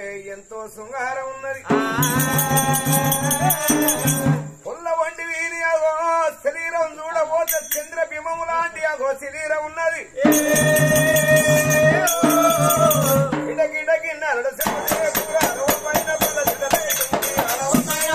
ఎంతో శృంగారం ఉన్నది పుల్ల వంటి వీరి అగో శరీరం చూడబోతే చంద్ర బింబము లాంటి అగో శరీరం ఉన్నది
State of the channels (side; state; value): both; identical; correlation 1.00